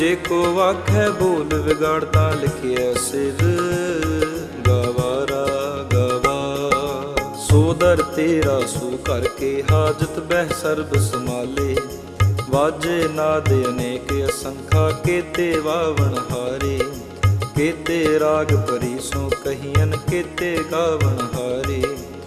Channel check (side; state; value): both; identical; correlation 1.00